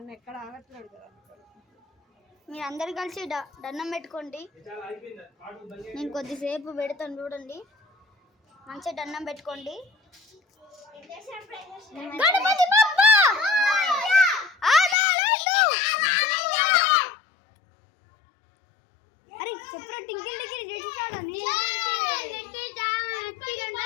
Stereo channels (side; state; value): right; drops out; at 15.0 s